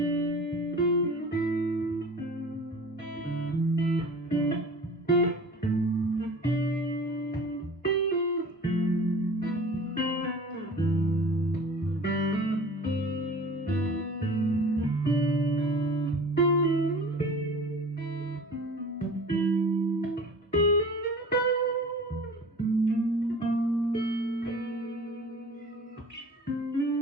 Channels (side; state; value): both; normal; correlation 0.41